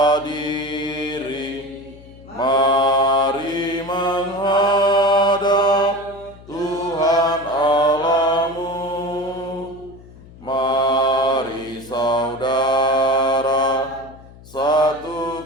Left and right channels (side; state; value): left; noise; hum, 21 dB below the sound